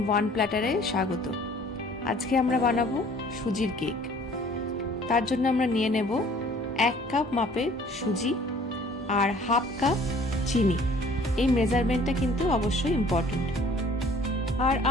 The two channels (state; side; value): normal; both; correlation 0.53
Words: ওয়ান প্ল্যাটারে স্বাগত। আজকে আমরা বানাবো সুজির কেক। তার জন্য আমরা নিয়ে নেব 1 কাপ মাপের সুজি আর হাফ কাপ চিনি। এই মেজারমেন্টটা কিন্তু অবশ্যই ইম্পর্টেন্ট। আর